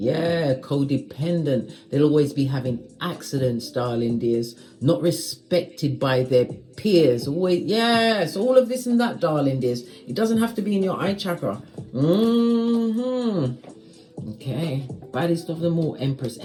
codependent. They'll always be having accidents, darling dears. Not respected by their peers. Always, yes, all of this and that, darling dears. It doesn't have to be in your eye chakra. Okay, baddest of them all, Empress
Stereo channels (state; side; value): identical; both; correlation 1.00